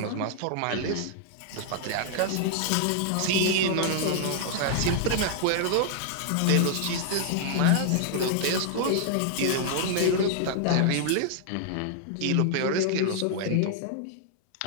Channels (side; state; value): both; different; correlation -0.01